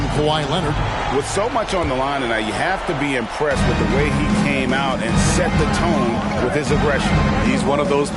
Kawhi Leonard. With so much on the line tonight, you have to be impressed with the way he came out and set the tone with his aggression. He's one of those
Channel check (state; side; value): identical; both; correlation 1.00